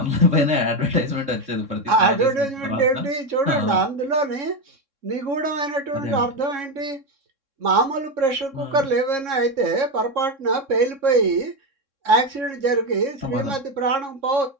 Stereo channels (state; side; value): late; left; 3.6 ms